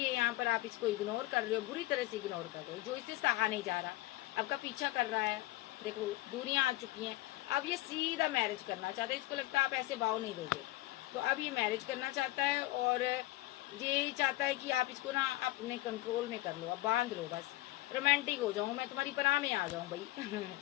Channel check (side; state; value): right; quieter; 17.5 dB